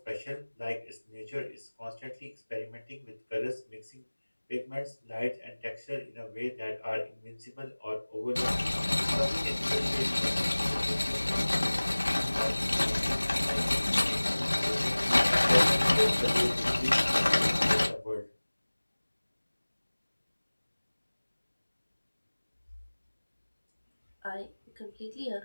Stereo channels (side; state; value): both; inverted; correlation -1.00